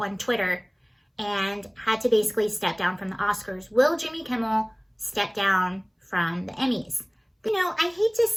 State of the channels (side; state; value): both; identical; correlation 1.00